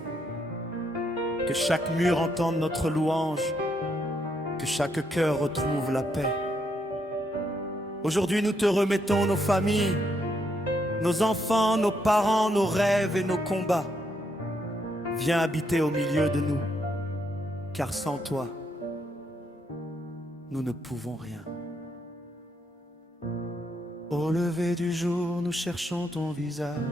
que chaque mur entende notre louange, que chaque cœur retrouve la paix. Aujourd'hui, nous te remettons nos familles, nos enfants, nos parents, nos rêves et nos combats. Viens habiter au milieu de nous, car sans toi, nous ne pouvons rien. Au lever du jour, nous cherchons ton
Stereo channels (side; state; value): both; normal; correlation 0.76